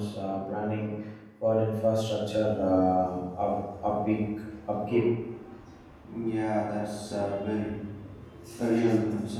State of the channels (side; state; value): both; identical; correlation 1.00